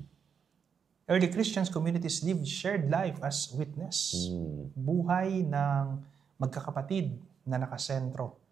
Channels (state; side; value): quieter; left; 6.9 dB